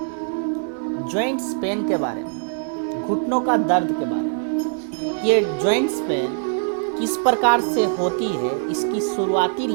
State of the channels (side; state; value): left; silent; 64 dB below the other